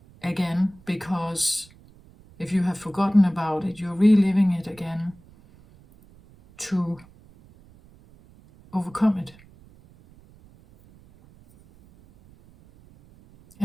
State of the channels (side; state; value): right; noise; rumble, 26 dB below the sound